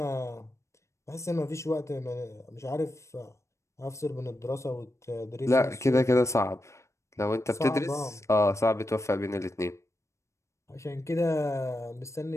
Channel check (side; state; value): right; late; 0.14 ms